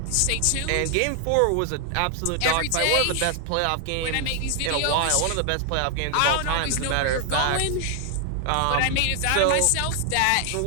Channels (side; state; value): both; different; correlation 0.00